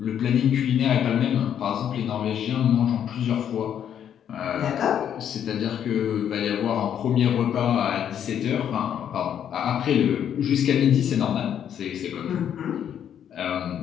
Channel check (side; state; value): right; quieter; 9.3 dB